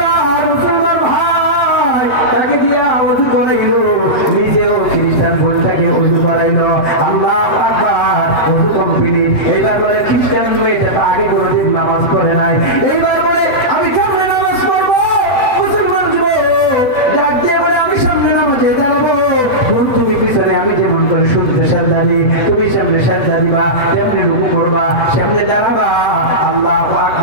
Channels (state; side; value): late; right; 7.8 ms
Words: মুসলমান ভাই তাকে দিয়া ওযু করাইল, নিজেও খ্রিস্টান বোনটাকে ওযু করাইল। আল্লাহু আকবার, ওযু কমপ্লিট। এইবার বলে খ্রিস্টান মেয়েটা আগে কোনোদিন নামাজ পড়ে নাই, এইবার বলে আমি কেমনে নামাজ পড়বো? মুসলমান যুবক ডাক দিয়ে বলে আমি সামনে নামাজে দাঁড়াবো, তুমি পিছনে, আমি যেমন করে শুনতে সেজদা দিই তুমি সামনে সেজদা দিবা, তেমনি রুকু করবা, সামনে দাঁড়াবা। আল্লাহু